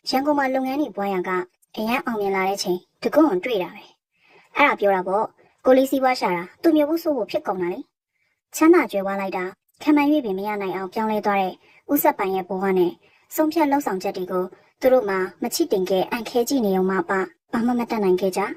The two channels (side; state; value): both; identical; correlation 1.00